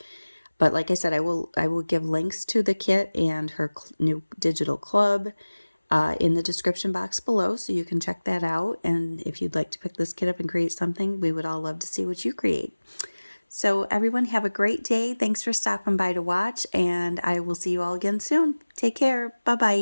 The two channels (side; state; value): both; inverted; correlation -1.00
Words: But like I said, I will give links to the kit and her new digital club in the description box below, so you can check that out. And if you'd like to pick this kit up and create something, we would all love to see what you create. So everyone have a great day. Thanks for stopping by to watch, and I will see you all again soon. Take care.